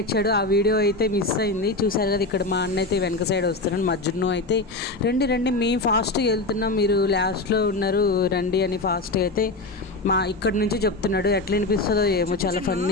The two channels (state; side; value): quieter; right; 3.1 dB